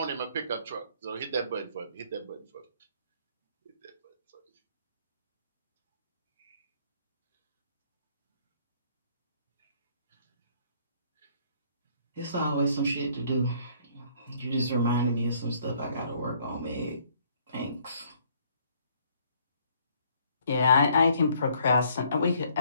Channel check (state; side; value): inverted; both; correlation -0.63